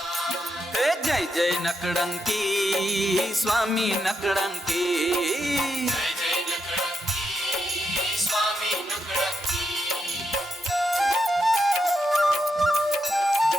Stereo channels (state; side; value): normal; both; correlation 0.84